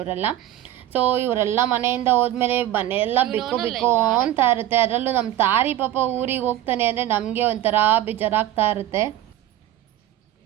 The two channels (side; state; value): left; quieter; 13.0 dB